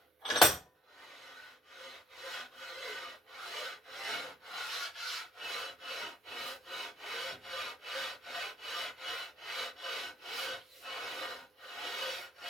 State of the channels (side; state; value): both; normal; correlation 0.66